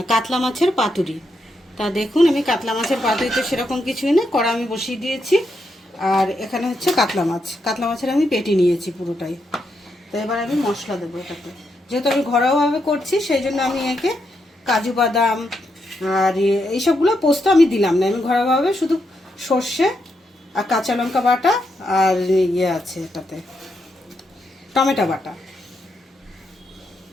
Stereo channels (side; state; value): both; normal; correlation 0.81